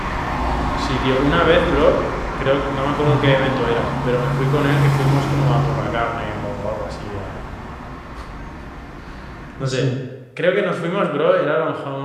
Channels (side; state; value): both; identical; correlation 1.00